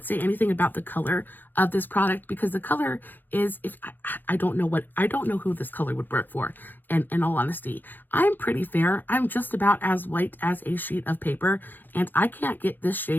say anything about the color of this product because the color is, I don't know who this color would work for, and in all honesty. I'm pretty fair. I'm just about as white as a sheet of paper, and I can't get this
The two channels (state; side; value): late; right; 0.089 ms